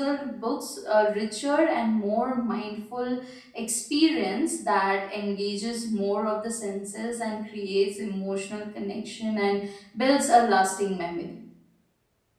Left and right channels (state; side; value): identical; both; correlation 1.00